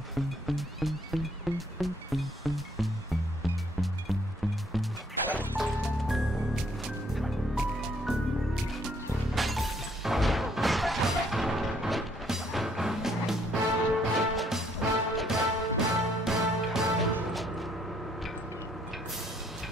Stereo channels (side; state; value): both; normal; correlation 0.66